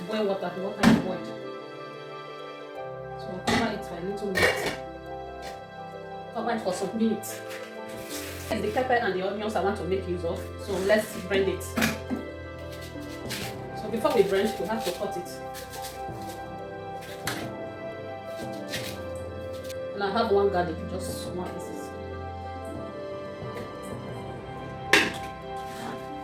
boiled water, the water is boiled. So we'll cover it for a little minute. Cover it for some minutes. The pepper and the onions I want to make use of, so let's blend it. So before we blend, we have to cut it. And I have one garlic, just one pieces.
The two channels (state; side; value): identical; both; correlation 1.00